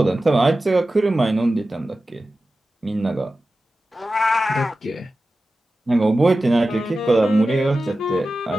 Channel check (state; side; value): normal; both; correlation 0.94